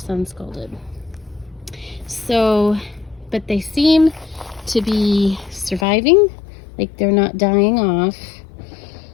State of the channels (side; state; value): right; drops out; at 5.9 s